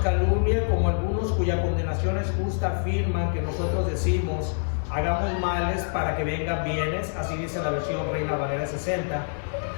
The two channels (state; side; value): silent; right; digital silence